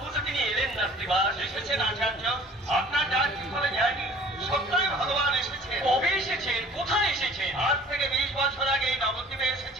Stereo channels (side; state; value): both; normal; correlation 0.49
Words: তো তিনি এলেন না শ্রীবাস এসেছেন আচার্য আপনার ডাক কি করে যায়নি সত্যই ভগবান এসেছেন কবে এসেছেন কোথায় এসেছেন আজ থেকে 20 বছর আগে এই নবদ্বীপে